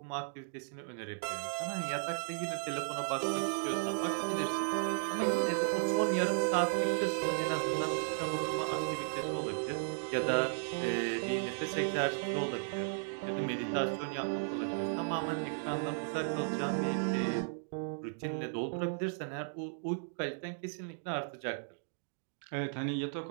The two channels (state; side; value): silent; left; digital silence